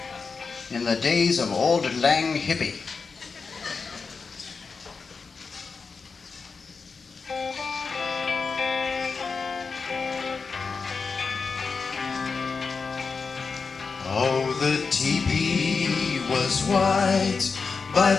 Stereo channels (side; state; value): right; quieter; 4.9 dB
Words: in the days of old lang hippie. Oh, the teepee was white by